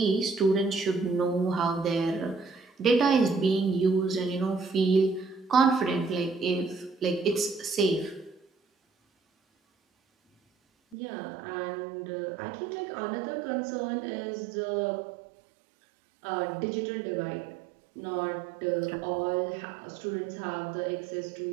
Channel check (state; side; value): drops out; left; at 11.0 s